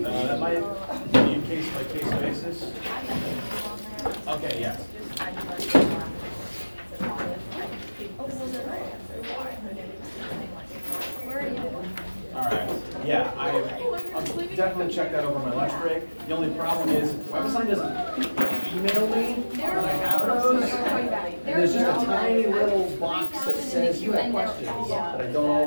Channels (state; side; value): inverted; both; correlation -1.00